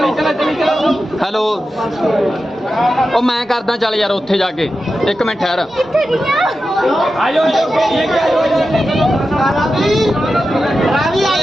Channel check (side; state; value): both; normal; correlation 0.91